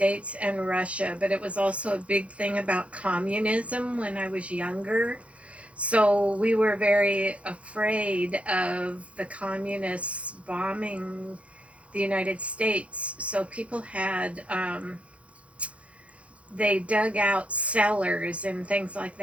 and Russia, but it was also a big thing about communism when I was younger. So we were very afraid of the communists bombing the United States. So people had they dug out cellars and things like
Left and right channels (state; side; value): late; left; 0.063 ms